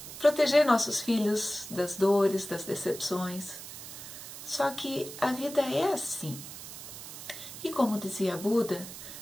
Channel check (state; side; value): noise; right; hiss, 12 dB below the sound